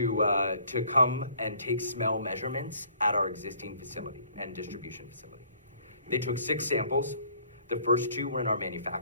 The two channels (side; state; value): both; inverted; correlation -0.58